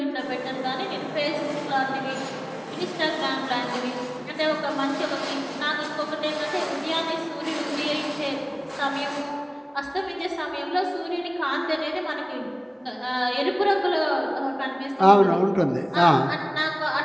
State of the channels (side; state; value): both; identical; correlation 1.00